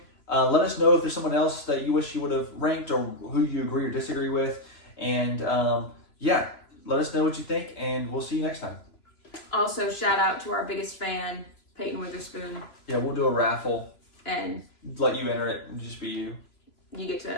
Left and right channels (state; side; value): late; right; 3.0 ms